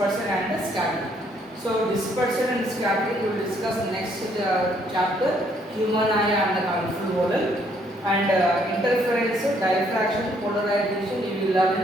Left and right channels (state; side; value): normal; both; correlation 0.68